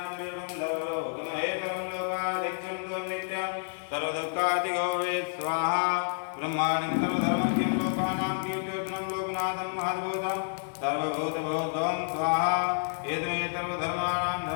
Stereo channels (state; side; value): silent; right; digital silence